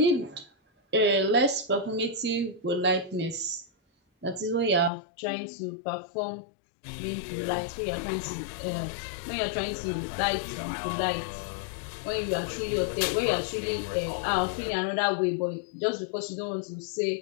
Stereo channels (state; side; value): drops out; right; at 4.9 s